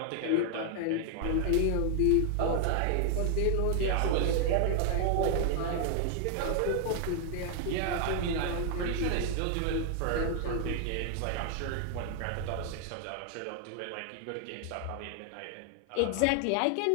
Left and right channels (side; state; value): both; different; correlation 0.00